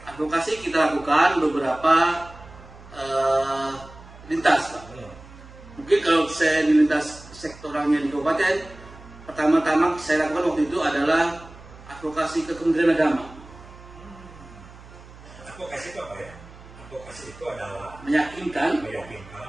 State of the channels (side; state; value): right; noise; hum, 20 dB below the sound